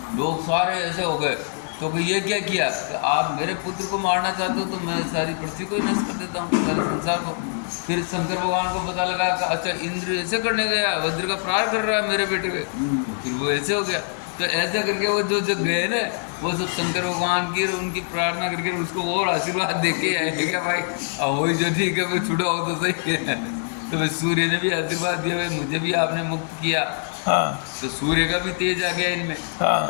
लोग सारे ऐसे हो गए। तो कि ये क्या किया कि आप मेरे पुत्र को मारना चाहते हो तो मैं सारी पृथ्वी को ही नष्ट कर देता हूँ, सारे संसार को। फिर शंकर भगवान को पता लगा कि अच्छा इंद्र ऐसे करने गया, वज्र का प्रहार कर रहा है मेरे बेटे पे, फिर वो ऐसे हो गया। तो ऐसे करके वो जो जो गए ना, वो सब शंकर भगवान की और उनकी प्रार्थना करके उसको और आशीर्वाद दे के आए क्या भाई अब वही जो ठीक है, मैं छुड़ा हो तो सही है। तो भाई सूर्य ने भी आशीर्वाद दिया, भाई मुझे भी आपने मुक्त किया। हाँ तो सूर्य का भी तेज आ गया इनमें। हाँ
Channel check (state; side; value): silent; right; 63 dB below the other